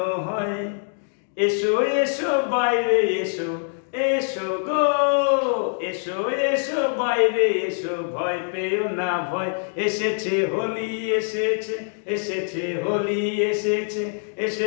হয়। এসো এসো বাইরে এসো, এসো গো, এসো এসো বাইরে এসো, ভয় পেও না ভয়। এসেছে হোলি, এসেছে, এসেছে হোলি, এসেছে,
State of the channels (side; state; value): right; silent; 63 dB below the other